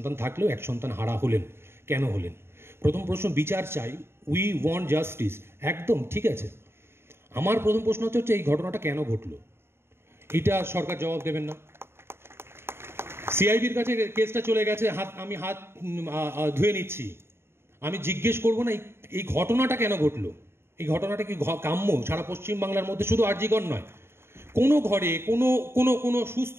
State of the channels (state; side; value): late; left; 0.12 ms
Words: থাকলেও এক সন্তান হারা হলেন। কেন হলেন? প্রথম প্রশ্ন, বিচার চাই, উই ওয়ান্ট জাস্টিস, একদম ঠিক আছে। আমার প্রথম প্রশ্ন হচ্ছে এই ঘটনাটা কেন ঘটলো, এটা সরকার জবাব দেবেন না? সিআইবির কাছে কেসটা চলে গেছে, আমি হাত ধুয়ে নিচ্ছি, আমি জিজ্ঞেস করবো না এই ঘটনাটা কেন ঘটলো? এই ঘটনাটা কি কাম্য? সারা পশ্চিমবাংলার মধ্যে, শুধু আরজিকর নয়, কোনো ঘরে, কোনো কোনো কোনো সুস্থ